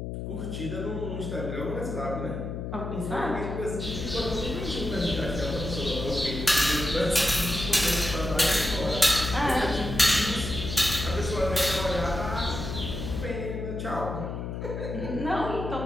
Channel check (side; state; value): left; noise; hum, 5 dB below the sound